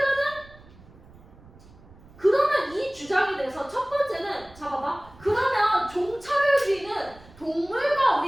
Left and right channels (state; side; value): noise; right; rumble, 23 dB below the sound